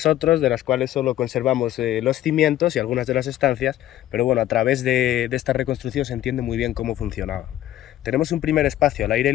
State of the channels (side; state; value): right; quieter; 13.4 dB